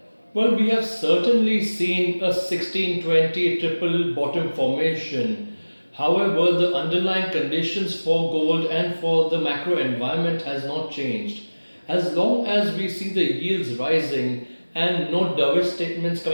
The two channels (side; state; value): both; inverted; correlation -1.00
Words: Well, we have certainly seen a 1620 triple bottom formation. However, the underlying conditions for gold and for the macro environment has not changed. As long as we see the yields rising and no dovish statements